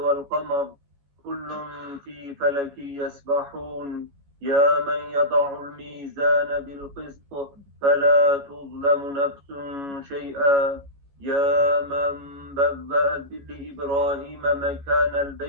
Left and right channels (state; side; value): late; left; 14 ms